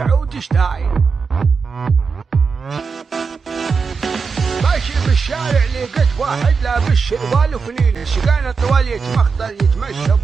ستايل. ماشي بالشارع لقيت واحد لابس شروال وفنيلة شقانا طوال يتمخطر يتمشى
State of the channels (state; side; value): quieter; left; 5.2 dB